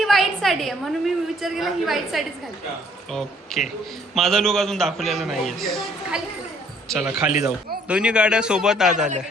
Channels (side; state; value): both; normal; correlation 0.62